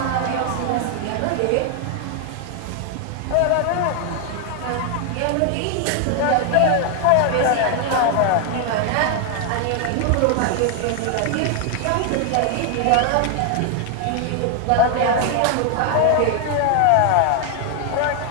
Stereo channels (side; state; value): both; different; correlation 0.00